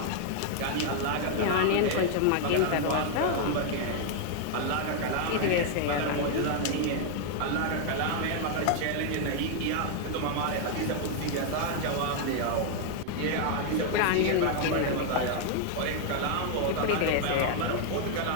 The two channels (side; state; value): both; different; correlation 0.00